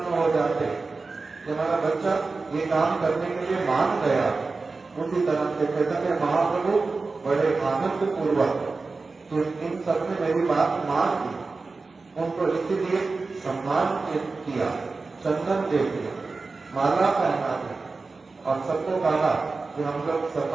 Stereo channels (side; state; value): left; quieter; 3.9 dB